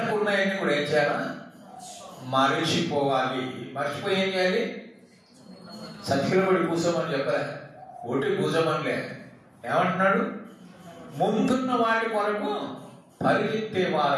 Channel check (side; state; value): both; identical; correlation 1.00